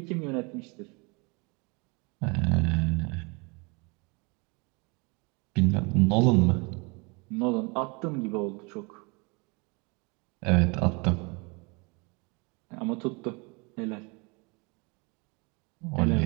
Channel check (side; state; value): left; quieter; 29.6 dB